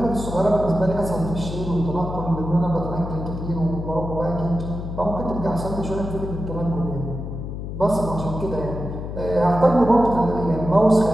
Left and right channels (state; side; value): noise; left; hum, 7 dB below the sound